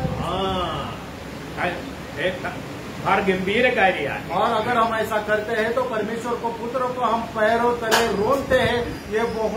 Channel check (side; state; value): both; identical; correlation 1.00